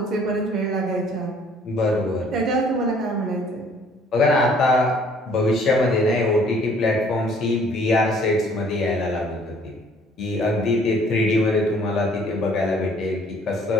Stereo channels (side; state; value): both; normal; correlation 0.58